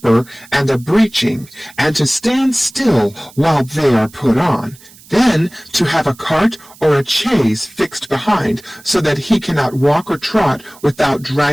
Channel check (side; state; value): right; noise; hiss, 23 dB below the sound